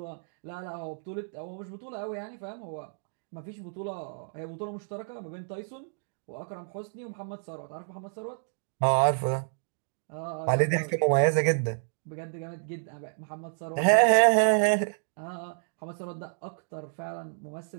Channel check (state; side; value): silent; left; digital silence